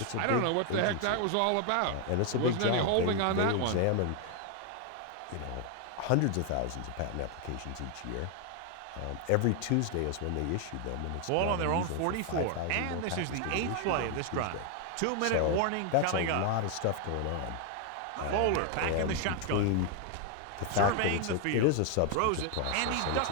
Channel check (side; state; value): both; different; correlation 0.00